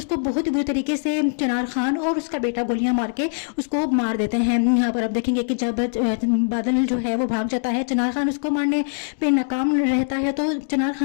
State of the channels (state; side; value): silent; right; digital silence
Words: बहुत ही बुरी तरीके से चिनार खान और उसका बेटा गोलियां मार के उसको मार देते हैं। यहाँ पर आप देखेंगे कि जब बादल जो है वो भाग जाता है, चिनार खान उसको मारने पे नाकाम रहता है, तो चिनार